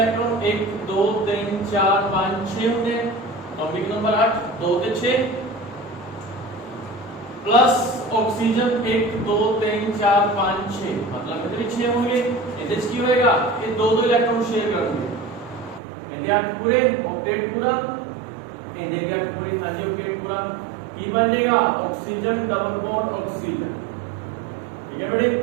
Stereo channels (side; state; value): left; drops out; at 15.8 s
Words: 1 2 3 4 5 6 होंगे, एटॉमिक नंबर 8 2 ਤੇ 6 प्लस ऑक्सीजन 1 2 3 4 5 6 मतलब कितने 6 होंगे। ਇਹਦੇ ਚ ਕੀ ਹੋਏਗਾ, ਇਹ ਦੋ ਦੋ ਇਲੈਕਟ੍ਰੋਨ ਸ਼ੇਅਰ ਕਰਨਗੇ। ਇਹਦੇ 8 ਪੂਰੇ, ऑक्टेट पूरा, ਇਹਦੇ ਵੀ 8 ਪੂਰੇ, ਹਾਂਜੀ ऑक्टेट पूरा। ਕੀ ਬਣ ਜਾਏਗਾ, ऑक्सीजन डबल बॉन्ड ऑक्सीजन। ठीक है बेटे,